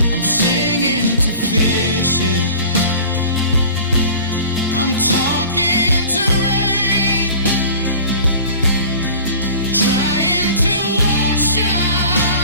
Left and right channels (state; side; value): inverted; both; correlation -0.42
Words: I'm singing to fishes, I'm talking to rain, trying to wash